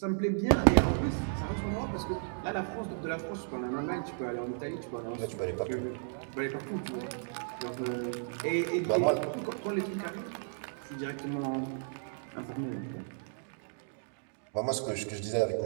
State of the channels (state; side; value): silent; left; digital silence